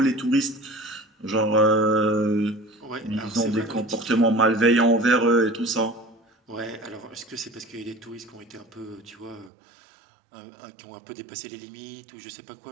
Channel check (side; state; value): left; drops out; at 9.5 s